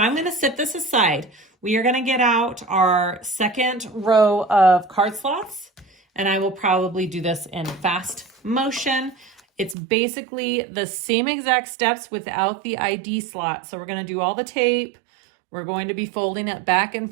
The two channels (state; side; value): drops out; left; at 9.8 s